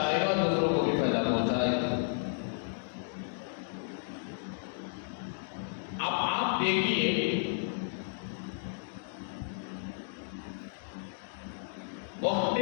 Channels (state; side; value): silent; right; digital silence